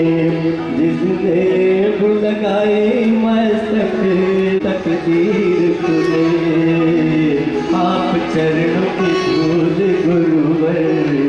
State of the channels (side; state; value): both; identical; correlation 1.00